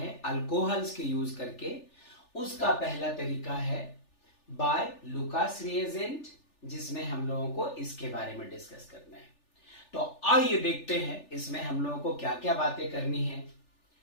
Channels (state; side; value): late; right; 3.4 ms